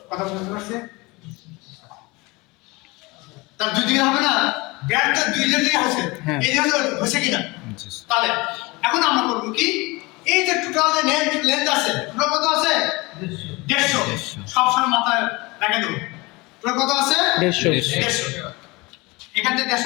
কথা বুঝতে পারছে, তার দুই দিকে হবে না, ব্যাটটা দুই দিকে আছে, হ্যাঁ। এই দিকে হচ্ছে কিনা, তাহলে এখন আমরা করবো কি, এই যে টোটাল যে লেন্থ আছে, টোটাল কত আছে 150, সবসময় মাথায় রেখে দেবো, টোটাল কত আছে 150। 150, এখান থেকে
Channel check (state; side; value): quieter; right; 24.0 dB